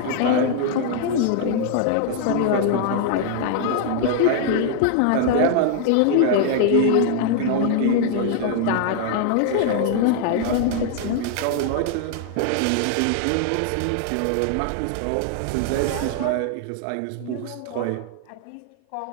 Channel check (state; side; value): different; both; correlation 0.00